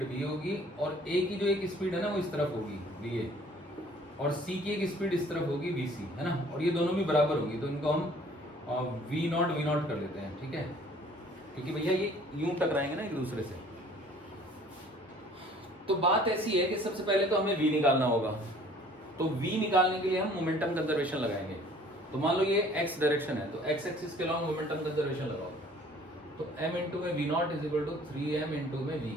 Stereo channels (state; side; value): normal; both; correlation 0.54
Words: वी होगी, और ए की जो एक स्पीड है ना वो इस तरफ होगी वी ए, और सी की एक स्पीड इस तरफ होगी वी सी, है ना, और ये दोनों भी बराबर होगी। तो इनको हम वी नॉट कर लेते हैं, ठीक है, क्योंकि भैया ये यूं टकराएंगे ना एक दूसरे से। तो बात ऐसी है कि सबसे पहले तो हमें v निकालना होगा। तो v निकालने के लिए हम मोमेंटम कंजर्वेशन लगाएंगे। तो मान लो ये x डायरेक्शन है, तो x एक्सिस के अलॉन्ग मोमेंटम कंजर्वेशन लगाओ। तो m इंटू में v0 is equal to 3m into में v।